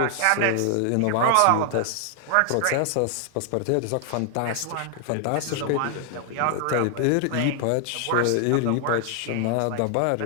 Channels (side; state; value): both; different; correlation 0.00